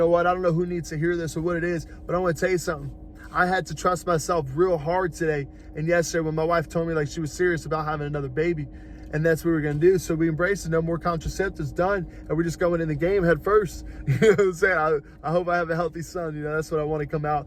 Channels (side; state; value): both; identical; correlation 1.00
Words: what? I don't know who needs to hear this or what it is, but I want to tell you something. I had to trust myself real hard today and yesterday when my wife told me she was serious about having another baby. And that's what we're going to do. So we embrace it. No more contraceptives, done. And we're just going in the game head first. You know what I'm saying? I hope I have a healthy son. You know, that's what I want to come out.